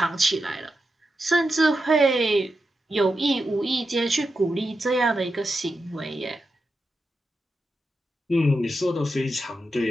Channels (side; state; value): both; normal; correlation 0.88